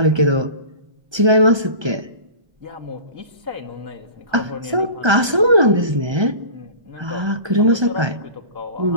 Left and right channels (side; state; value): left; late; 1.3 ms